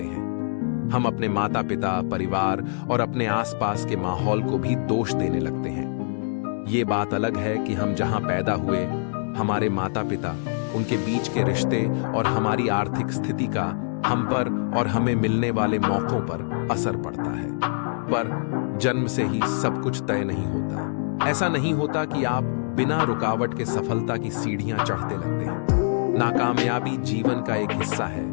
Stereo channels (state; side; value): silent; right; digital silence